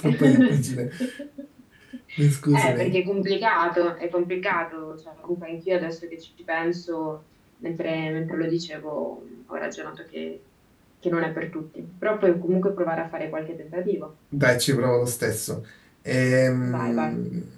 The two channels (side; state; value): both; identical; correlation 1.00